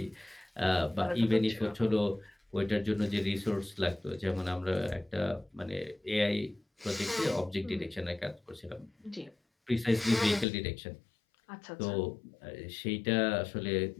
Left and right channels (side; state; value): right; drops out; at 10.5 s